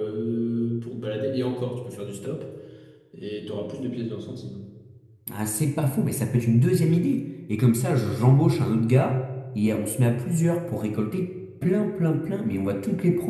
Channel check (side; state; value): both; identical; correlation 1.00